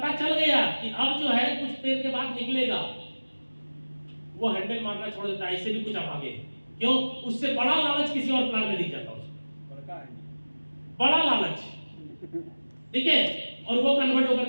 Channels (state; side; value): inverted; both; correlation -1.00